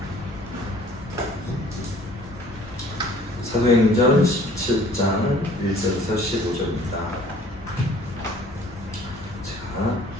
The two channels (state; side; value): normal; both; correlation 0.53